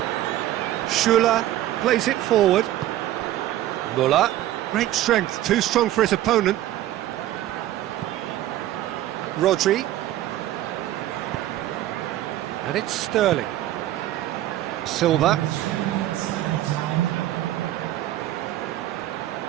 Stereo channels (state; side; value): quieter; left; 13.9 dB